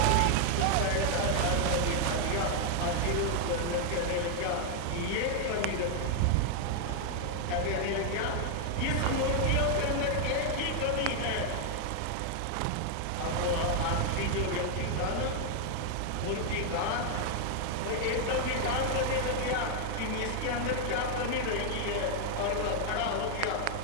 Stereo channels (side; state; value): both; different; correlation 0.00